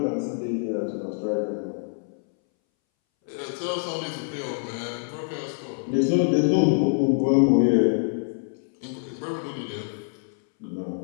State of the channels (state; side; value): silent; right; 61 dB below the other